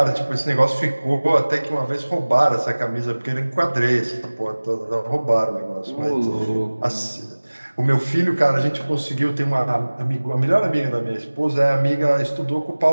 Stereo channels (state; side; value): inverted; both; correlation -1.00